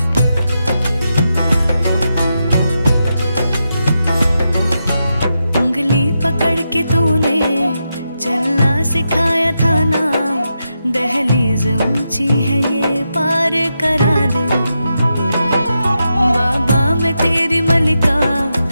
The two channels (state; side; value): inverted; both; correlation -0.86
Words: उंगली पकड़ के तूने चलना सिखाया था ना, दहलीज ऊंची है ये पार करा दे। बाबा मैं तेरी मलिका,